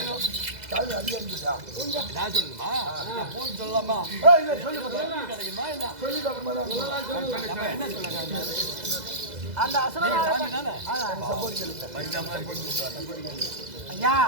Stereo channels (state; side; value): late; left; 2.0 ms